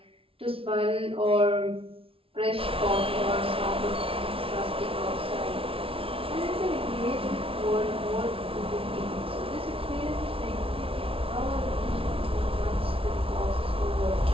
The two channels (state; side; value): late; left; 0.26 ms